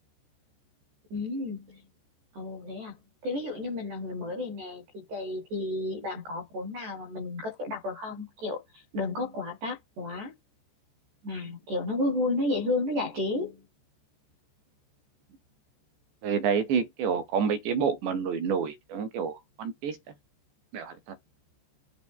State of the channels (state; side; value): late; left; 14 ms